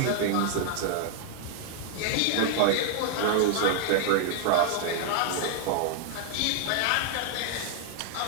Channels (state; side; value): different; both; correlation 0.00